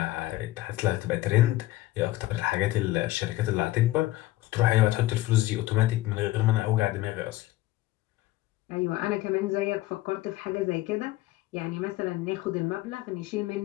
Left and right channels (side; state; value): right; quieter; 16.9 dB